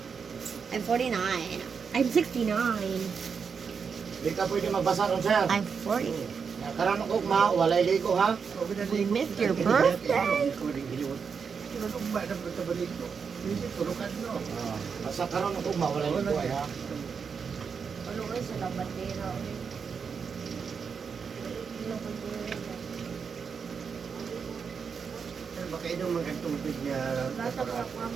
I'm 49. I'm 69. Di ka pwede magbasa ron, sir. I'm 40. Karon ko ma, walay ligo ha. We missed your birthday. Basta karon ko ma, walay ligo ay ha. Ano kayo sa labandera? Baka inom mga tubig niya. Bata pa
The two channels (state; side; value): quieter; left; 6.0 dB